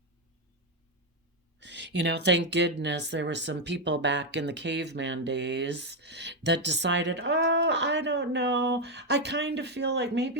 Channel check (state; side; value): normal; both; correlation 0.05